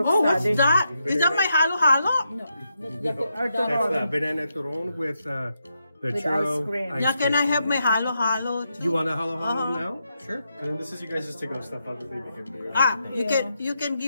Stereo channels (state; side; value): inverted; both; correlation -0.83